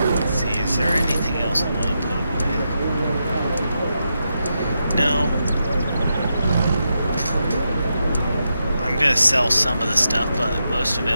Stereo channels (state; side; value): inverted; both; correlation -0.85